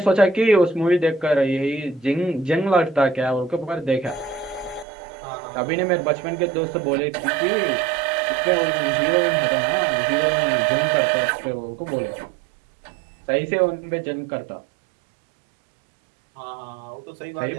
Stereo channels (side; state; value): left; drops out; at 4.9 s